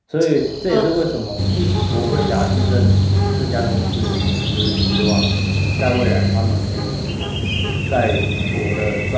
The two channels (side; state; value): both; identical; correlation 1.00